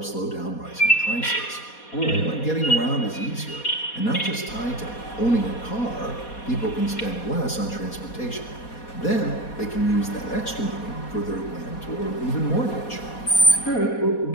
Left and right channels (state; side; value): late; right; 4.2 ms